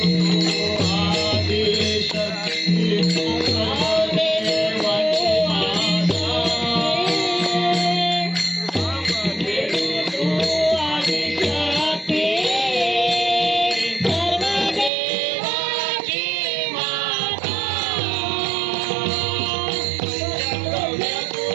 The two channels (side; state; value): left; drops out; at 14.9 s